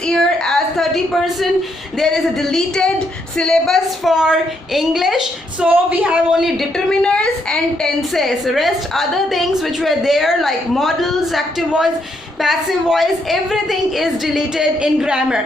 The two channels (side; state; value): both; normal; correlation 0.76